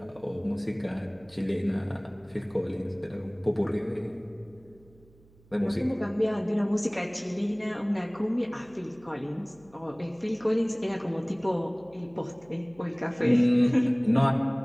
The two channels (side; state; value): right; noise; hum, 28 dB below the sound